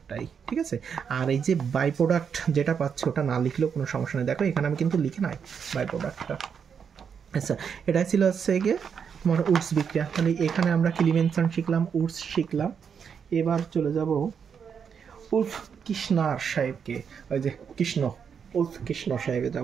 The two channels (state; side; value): quieter; left; 6.9 dB